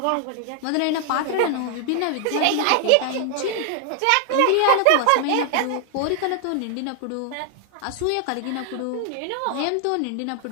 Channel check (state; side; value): different; both; correlation 0.00